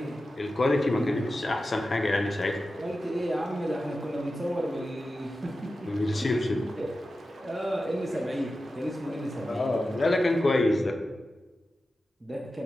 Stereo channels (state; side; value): normal; both; correlation 0.93